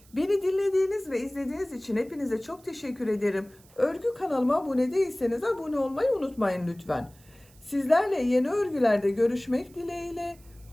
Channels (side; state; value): right; noise; hiss, 27 dB below the sound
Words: Beni dinlediğiniz ve izlediğiniz için hepinize çok teşekkür ederim. Örgü kanalıma abone değilseniz abone olmayı unutmayın lütfen. Sizlerle yeni örgülerde görüşmek dileğiyle.